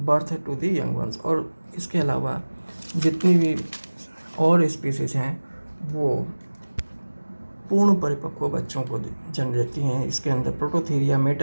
to the young ones. और इसके अलावा जितनी भी और स्पीसीज हैं वो पूर्ण परिपक्व बच्चों को जन्म देती हैं। इसके अंदर प्रोटोथीरिया,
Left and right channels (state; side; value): inverted; both; correlation -1.00